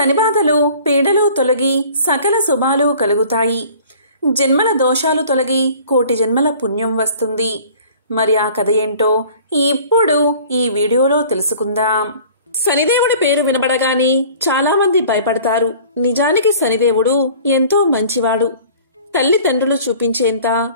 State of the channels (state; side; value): inverted; both; correlation -0.48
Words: పీడలు తొలగి సకల శుభాలు కలుగుతాయి. జన్మల దోషాలు తొలగి కోటి జన్మల పుణ్యం వస్తుంది. మరి ఆ కథ ఏంటో ఇప్పుడు ఈ వీడియోలో తెలుసుకుందాం. శనిదేవుడి పేరు వినబడగానే చాలా మంది భయపడతారు. నిజానికి శనిదేవుడు ఎంతో మంచివాడు. తల్లిదండ్రులు చూపించేంత